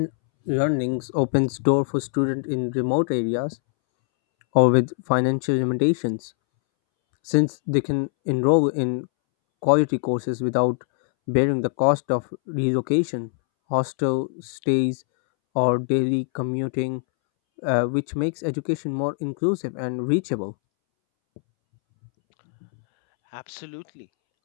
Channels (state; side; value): silent; right; 63 dB below the other